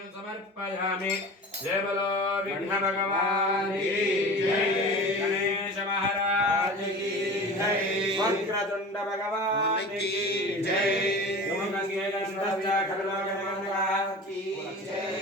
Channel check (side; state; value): both; normal; correlation 0.36